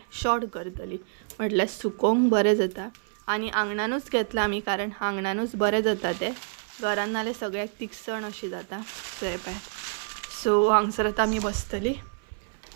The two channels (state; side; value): silent; left; 60 dB below the other